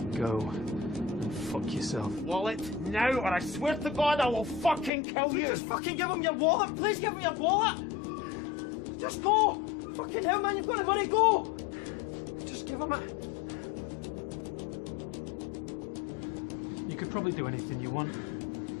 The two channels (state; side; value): drops out; right; at 4.9 s